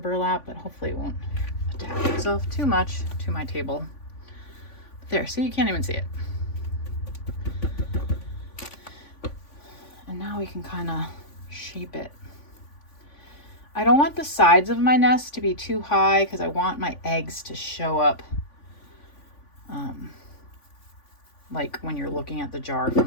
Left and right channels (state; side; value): late; right; 3.5 ms